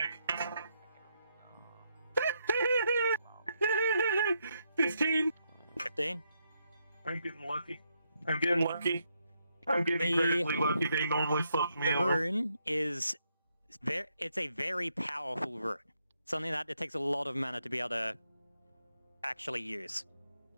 15. 15? I'm getting lucky. I'm getting lucky. I'm getting incredibly lucky. They normally fuck me The over. rune is it's a very powerful rune. Something that it takes a lot of mana to be able to actually use.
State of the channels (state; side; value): inverted; both; correlation -0.78